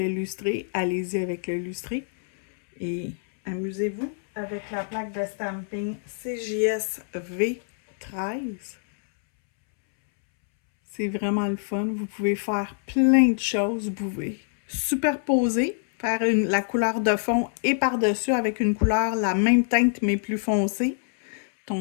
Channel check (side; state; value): right; silent; 62 dB below the other